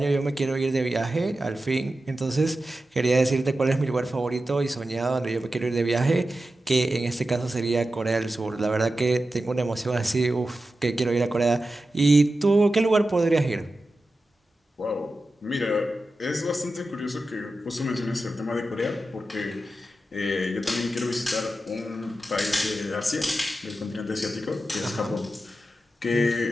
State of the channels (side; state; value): both; normal; correlation 0.92